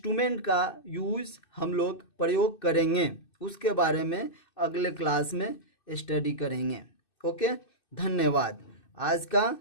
का यूज़ हम लोग प्रयोग करेंगे, उसके बारे में अगले क्लास में स्टडी करेंगे। ओके, धन्यवाद। आज का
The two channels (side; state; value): right; late; 2.6 ms